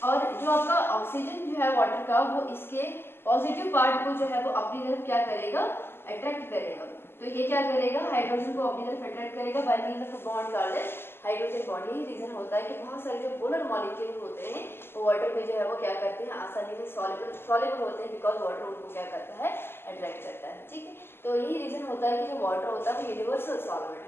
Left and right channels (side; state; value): right; late; 0.11 ms